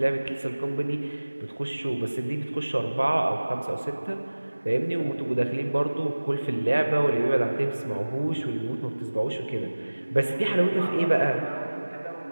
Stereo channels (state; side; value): inverted; both; correlation -1.00